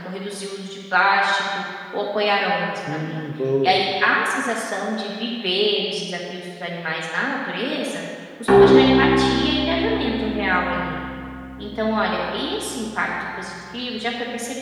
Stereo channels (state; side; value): identical; both; correlation 1.00